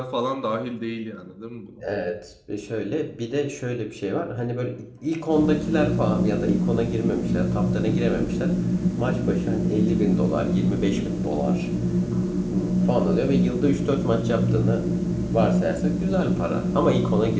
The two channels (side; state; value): both; identical; correlation 1.00